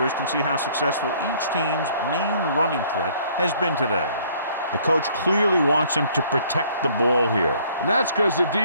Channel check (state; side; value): inverted; both; correlation -0.59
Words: can see how successful each team's main running threat has been today. The coach clearly wants him to protect the ball here. And that's because the